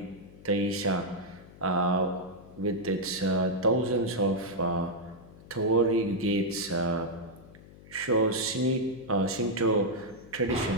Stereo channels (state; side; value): noise; left; hum, 20 dB below the sound